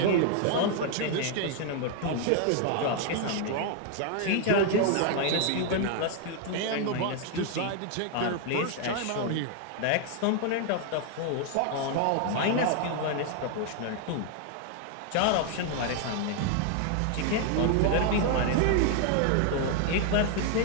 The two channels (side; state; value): both; different; correlation 0.00